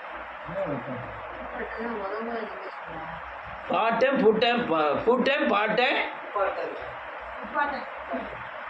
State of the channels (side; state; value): both; identical; correlation 1.00